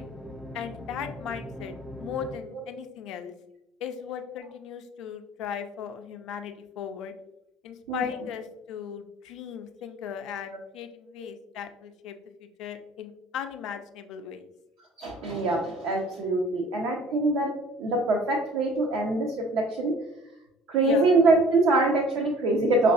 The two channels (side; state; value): both; normal; correlation 0.51